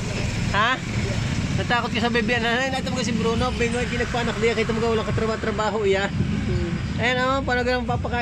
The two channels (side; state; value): both; identical; correlation 1.00